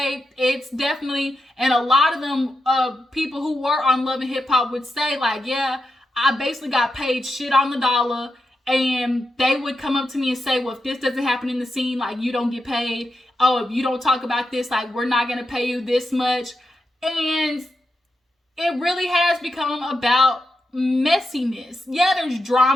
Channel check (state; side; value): normal; both; correlation 0.87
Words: It's definitely, and a lot of them people who were on Love and Hip Hop would say like, yeah, I basically got paid shit on the dollar, and they would come up to me and say, well, if this doesn't happen in the scene, like, you don't get paid. Oh, if you don't talk about this, like, we're not gonna pay you this much. And it really has become about messiness. Yeah, there's